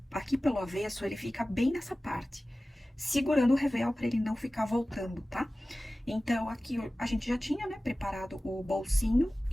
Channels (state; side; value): normal; both; correlation 0.97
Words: aqui pelo avesso, ele fica bem nessa parte, segurando o revel para ele não ficar voltando, tá? Então, aqui a gente já tinha, né, preparado o bolsinho